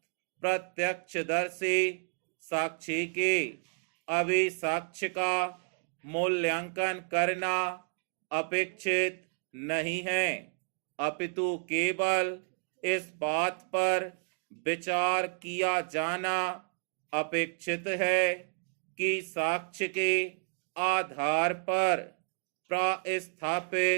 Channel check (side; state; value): left; silent; 57 dB below the other